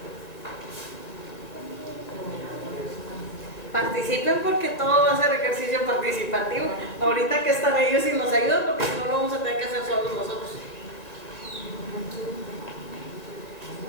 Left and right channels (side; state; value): right; late; 1.8 ms